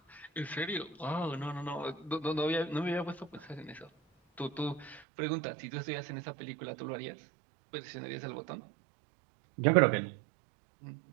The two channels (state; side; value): drops out; left; at 5.0 s